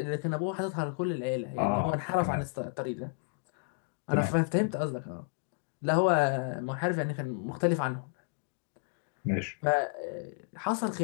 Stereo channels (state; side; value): silent; right; 57 dB below the other